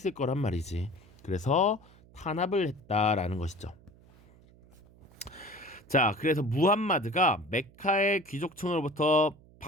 거란 말이지. 그래서 탄압을 했다라는 것이죠. 자, 그래서 무함마드가 메카의 귀족층으로부터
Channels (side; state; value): right; noise; hum, 26 dB below the sound